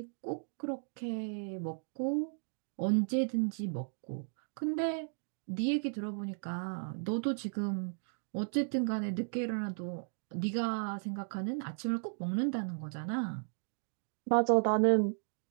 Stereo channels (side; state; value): left; silent; digital silence